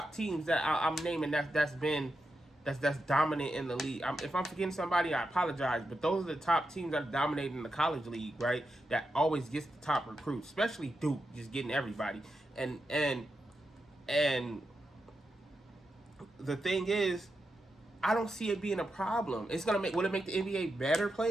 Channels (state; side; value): normal; both; correlation 0.87